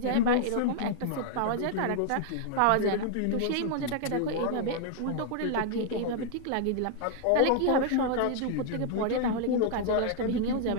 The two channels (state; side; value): different; both; correlation 0.00